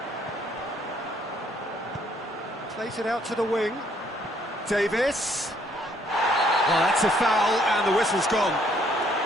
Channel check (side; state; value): both; normal; correlation 0.66